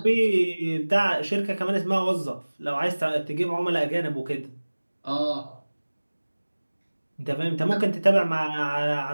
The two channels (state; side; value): inverted; both; correlation -1.00